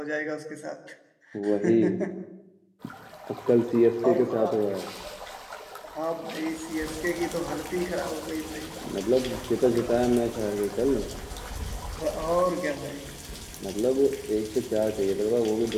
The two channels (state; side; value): identical; both; correlation 1.00